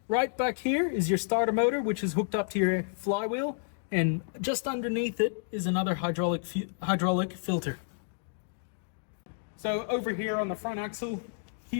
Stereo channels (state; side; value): silent; right; digital silence